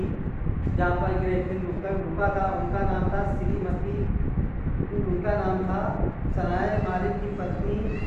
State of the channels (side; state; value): both; identical; correlation 1.00